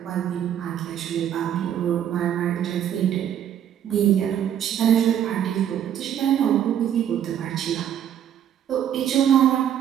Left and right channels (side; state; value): left; quieter; 9.9 dB